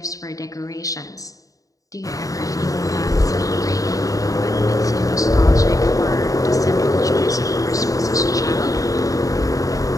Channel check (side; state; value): right; late; 0.16 ms